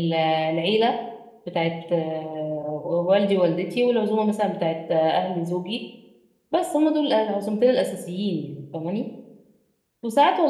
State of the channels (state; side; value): identical; both; correlation 1.00